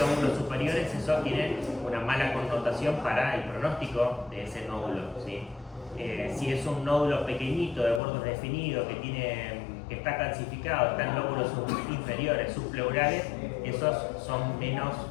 lóbulos superiores, eso tiene una mala connotación para el pronóstico de ese nódulo, ¿sí? Si es un nódulo pequeñito, de bordes definidos, que está calcificado, está en lóbulos inferiores, subpleurales, esos son menos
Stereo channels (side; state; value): right; drops out; at 8.0 s